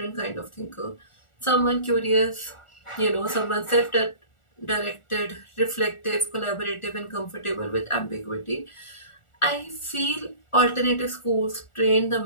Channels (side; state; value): right; late; 1.4 ms